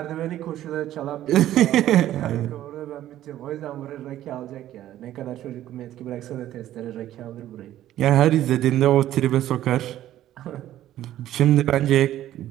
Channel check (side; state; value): left; quieter; 13.0 dB